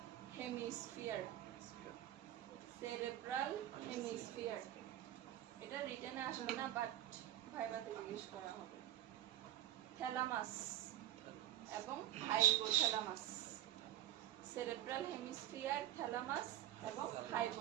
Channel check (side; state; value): left; quieter; 12.7 dB